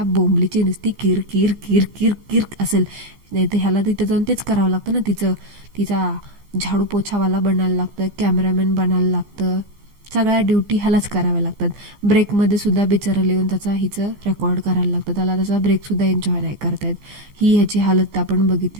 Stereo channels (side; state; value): left; late; 15 ms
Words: बोंबलीची नुसती किर किर किर किर किर असेल. नाही तर ह्याला तिथं जाऊन तेच करावं लागतं ना, तिचा झाडू पोछावाला बनायला लागतं, कॅमेरामॅन बनायला लागतं, सगळ्या ड्युटी ह्यालाच कराव्या लागतात. ब्रेकमध्ये सुद्धा बिचारा लिहून हिचं रेकॉर्ड करायला लागतं, त्याला त्याचा ब्रेकसुद्धा एन्जॉय नाही करतायत. ही ह्याची हालत आपण